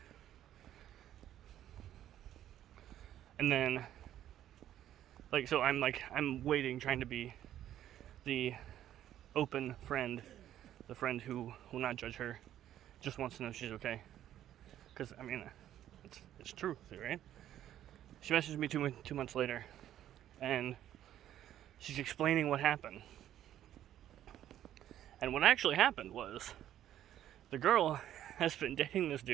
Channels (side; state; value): left; quieter; 11.7 dB